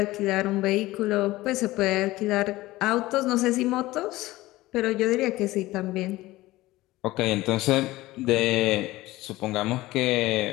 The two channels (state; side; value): quieter; right; 18.1 dB